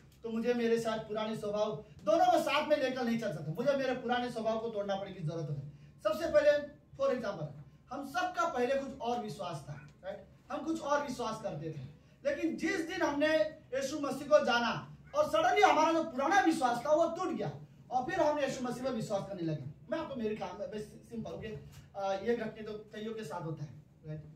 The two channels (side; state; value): both; identical; correlation 1.00